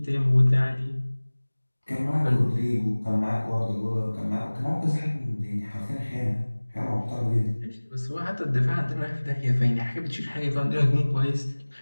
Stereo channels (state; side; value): inverted; both; correlation -1.00